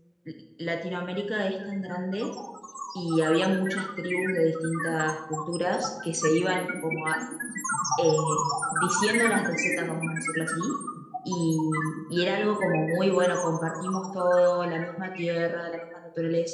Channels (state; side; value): identical; both; correlation 1.00